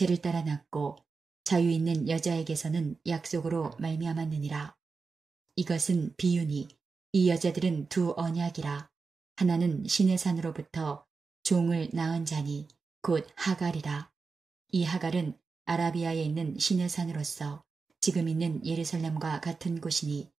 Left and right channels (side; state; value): left; quieter; 4.6 dB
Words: 따라 낳고 자유 있는 여자에게서는 약속으로 말미암았느니라. 이것은 비유니 이 여자들은 두 언약이라. 하나는 신의 산으로부터 종을 낳은 자니 곧 하갈이라. 이 하갈은 아라비아에 있는 신의 산으로서 지금 있는 예루살렘과 같은 곳이니